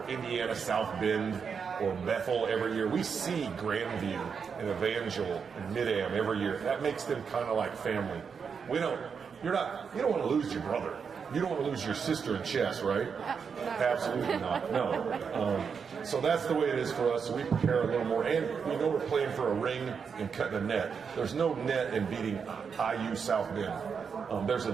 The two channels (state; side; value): quieter; left; 6.2 dB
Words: Indiana South Bend or Bethel every year. We see Grandview and Evangel and Mid-Am every year. That makes them kind of like family. You don't want to lose your brother. You don't want to lose your sister in chess, right? No. Absolutely not. No. So that's the way it is for us. We prepare a little more, and we know we're playing for a ring and cutting a net. There's no net in beating IU South Bend. There's a